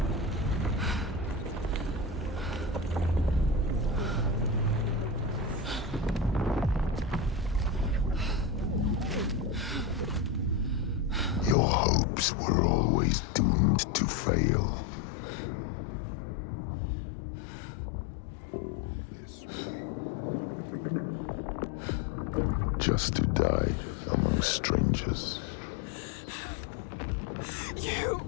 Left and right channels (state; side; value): drops out; right; at 11.6 s